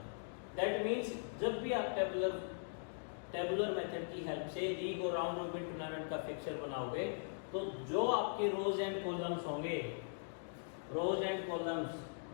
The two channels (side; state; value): right; silent; digital silence